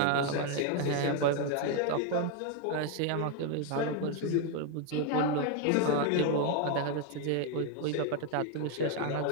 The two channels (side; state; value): both; different; correlation 0.01